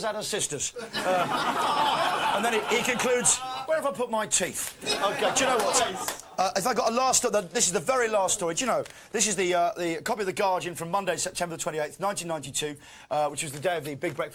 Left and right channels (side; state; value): both; identical; correlation 1.00